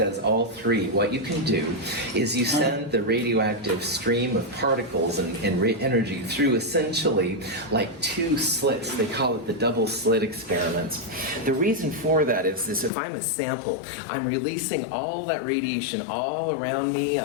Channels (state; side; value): drops out; right; at 12.9 s